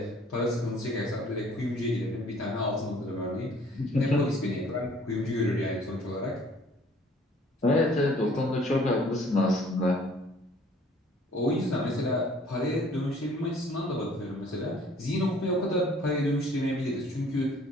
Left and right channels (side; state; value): both; normal; correlation 0.56